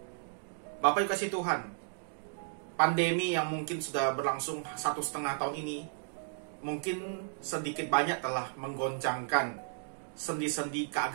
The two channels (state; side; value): silent; left; digital silence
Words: Bapak Ibu kasih Tuhan, pandemi yang mungkin sudah berlangsung 1,5 tahun ini mungkin sedikit banyak telah menggoncangkan sendi-sendi